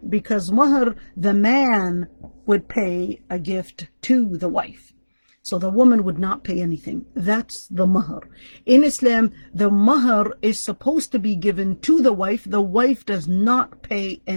because mahar, the man would pay a gift to the wife. So the woman would not pay anything. That's the mahar. In Islam, the mahar is supposed to be given to the wife. The wife does not pay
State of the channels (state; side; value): inverted; both; correlation -1.00